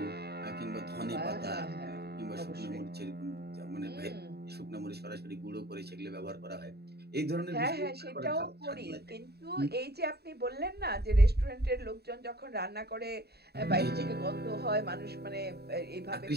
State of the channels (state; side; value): late; left; 0.47 ms